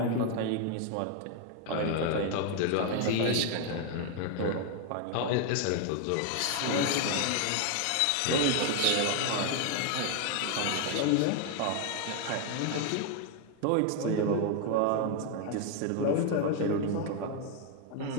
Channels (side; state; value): both; different; correlation 0.01